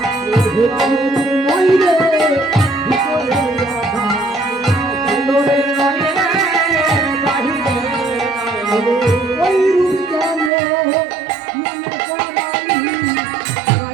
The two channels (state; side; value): drops out; left; at 10.5 s